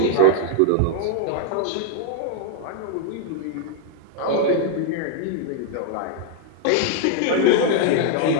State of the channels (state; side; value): different; both; correlation 0.00